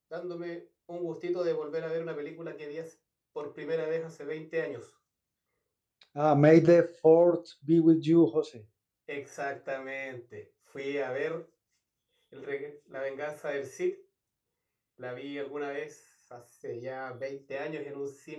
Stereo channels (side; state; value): both; identical; correlation 1.00